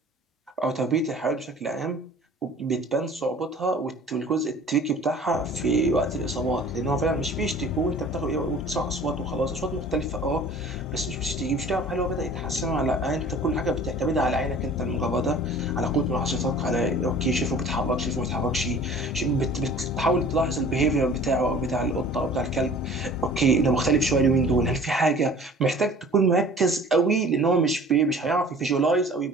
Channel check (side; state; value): both; normal; correlation 0.46